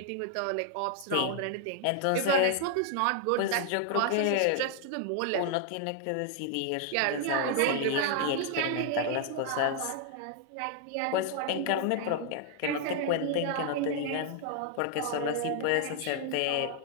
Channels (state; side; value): different; both; correlation 0.00